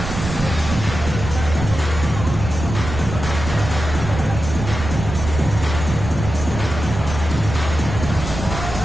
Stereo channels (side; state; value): right; noise; rumble, 7 dB below the sound